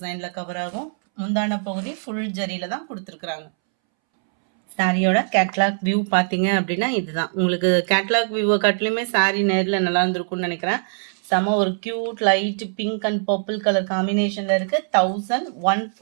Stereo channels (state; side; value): silent; left; 64 dB below the other